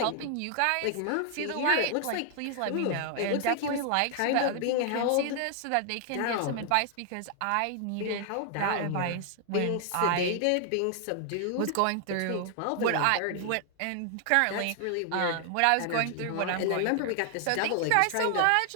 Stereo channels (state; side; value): different; both; correlation 0.00